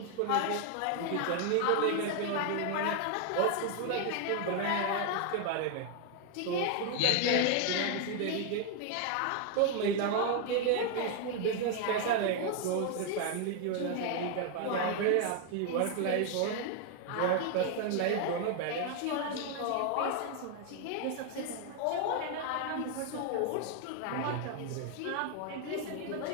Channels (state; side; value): different; both; correlation 0.00